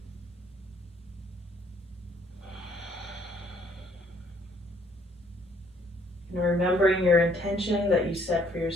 And remembering your intention that you set for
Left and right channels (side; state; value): both; normal; correlation 0.64